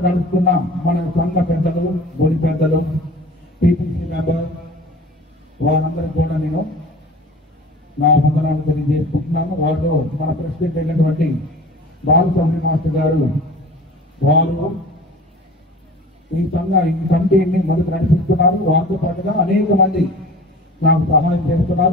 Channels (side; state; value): both; normal; correlation 0.42